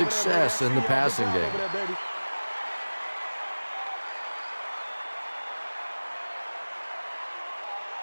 in the passing game.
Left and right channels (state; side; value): inverted; both; correlation -1.00